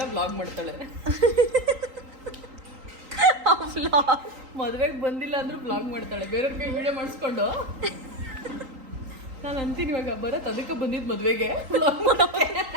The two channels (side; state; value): left; late; 3.8 ms